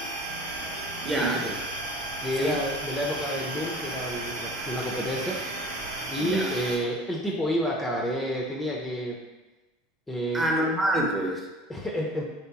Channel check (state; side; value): normal; both; correlation 0.46